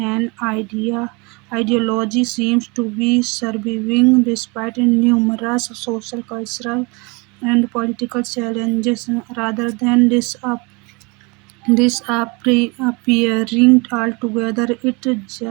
ideology seems to be surviving despite numerous social, cultural, and political challenges rather than disappearing altogether. It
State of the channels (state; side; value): quieter; left; 28.3 dB